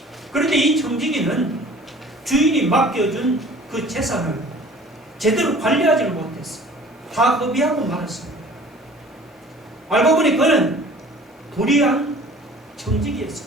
그런데 이 청지기는 주인이 맡겨준 그 재산을 제대로 관리하지를 못했어요. 다 허비하고 말았습니다. 알고 보니 그는 불의한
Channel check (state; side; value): normal; both; correlation 0.48